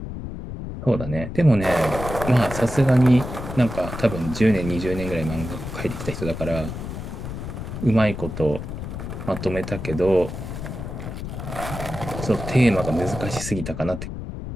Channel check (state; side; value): noise; left; rumble, 7 dB below the sound